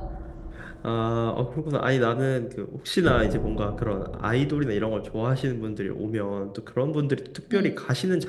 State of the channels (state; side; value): identical; both; correlation 1.00